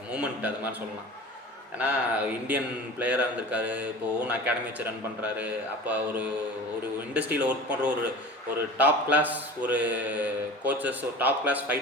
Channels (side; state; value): both; normal; correlation 0.38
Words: மூமெண்ட் அது மாதிரி சொல்லலாம். ஏன்னா இந்தியன் பிளேயராக இருந்திருக்காரு. இப்போ ஓன் அகாடமி வச்சு ரன் பண்ணுறாரு. அப்போ ஒரு ஒரு இண்டஸ்ட்ரியில் ஒர்க் பண்ணுற ஒரு டாப் கிளாஸ் ஒரு கோச்சஸ், ஒரு டாப் கிளாஸ்